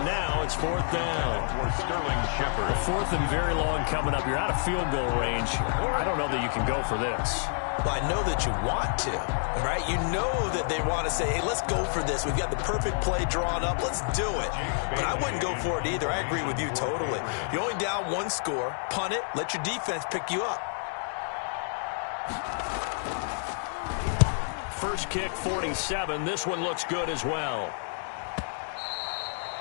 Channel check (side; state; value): right; silent; digital silence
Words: now, it's 4th down. For Sterling Shepard. 4th and very long coming up. You're out of field goal range. I don't know that you can go for this. Well, I know that you want to, right? You know that they want to say, hey, let's go for this. We've got the perfect play drawn up. Let's do it. But I wouldn't go for it either. I agree with you totally. You're only down one score. Punt it. Let your defense pick you up. First kick, 47. This one looks good as well.